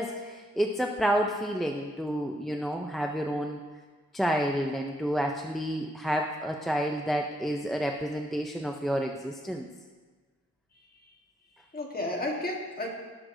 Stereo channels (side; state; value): both; normal; correlation 0.76